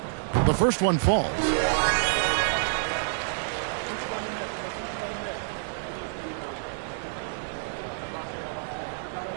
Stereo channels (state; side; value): silent; left; digital silence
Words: The first one falls.